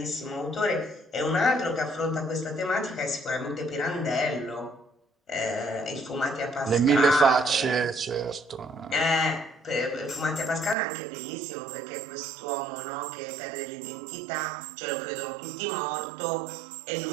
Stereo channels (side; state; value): left; drops out; at 10.8 s